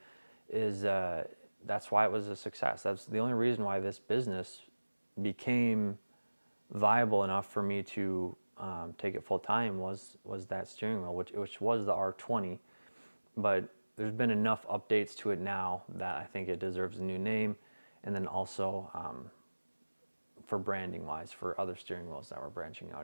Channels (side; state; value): both; inverted; correlation -1.00